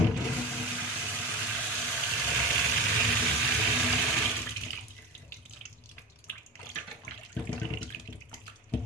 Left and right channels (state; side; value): normal; both; correlation 0.29